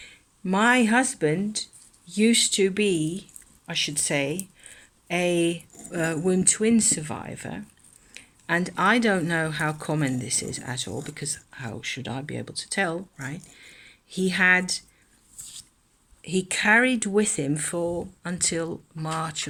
My husband used to be, I should say, a womb twin survivor, and I don't know how common this is at all, because how should I be able to tell, right? He carried with him for until March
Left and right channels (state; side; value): identical; both; correlation 1.00